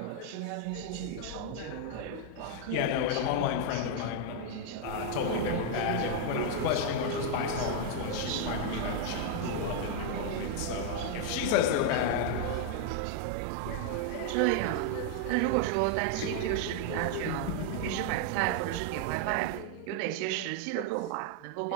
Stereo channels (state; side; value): different; both; correlation 0.00